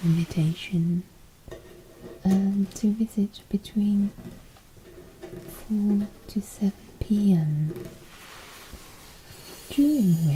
invitation to visit between 4 to 7 p.m, during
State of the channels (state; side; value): identical; both; correlation 1.00